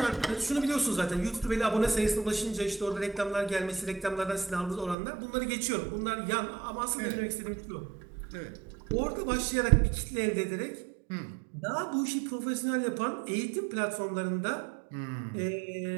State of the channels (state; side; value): drops out; left; at 5.0 s